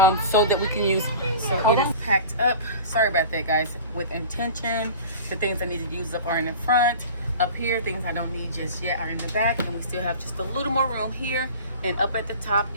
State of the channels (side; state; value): both; inverted; correlation -0.38